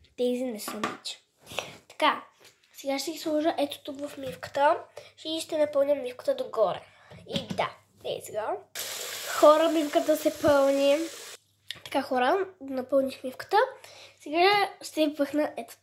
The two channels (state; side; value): identical; both; correlation 1.00